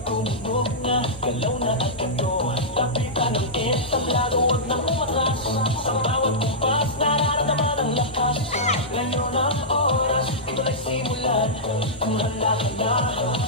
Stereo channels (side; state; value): both; normal; correlation -0.12